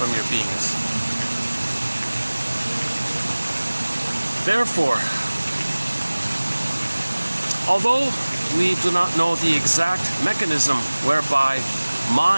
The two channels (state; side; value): inverted; both; correlation -1.00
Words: your beingness. Therefore, although we do not know the exact mechanism whereby